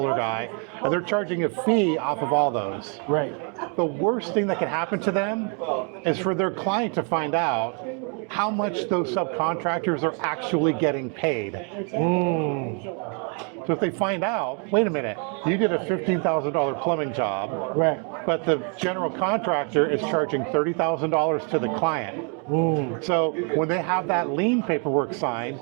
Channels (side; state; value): left; quieter; 38.5 dB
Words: guy, and they're charging a fee off of all those. Right. The worst thing that can happen to them is for their client to find out how much those subcontractors are actually getting paid. So if they find out, wait a minute, you did a $15,000 plumbing job, Right. but the general contractor is charging $30,000 to the client. So when they have that lien paperwork signed,